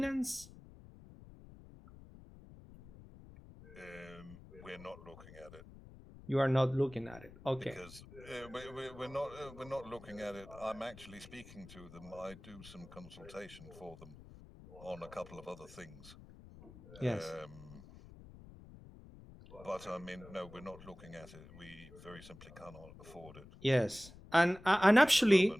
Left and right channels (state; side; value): noise; left; rumble, 18 dB below the sound